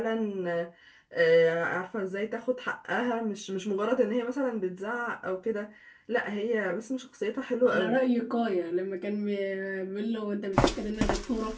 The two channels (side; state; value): both; identical; correlation 1.00